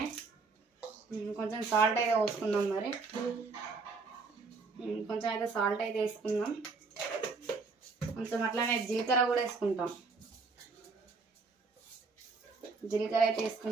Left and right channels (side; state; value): left; quieter; 4.3 dB